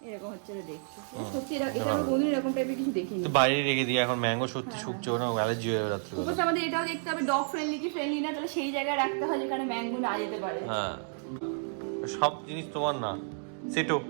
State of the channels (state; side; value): silent; left; 57 dB below the other